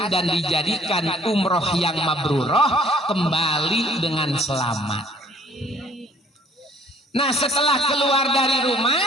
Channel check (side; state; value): both; normal; correlation 0.58